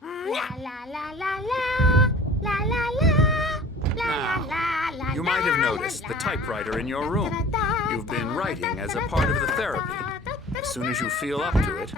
la la la la la Now, you might have noticed the typewriter in your room. You've been writing as a part of the therapy. As soon as you feel up to it,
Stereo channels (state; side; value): normal; both; correlation 0.44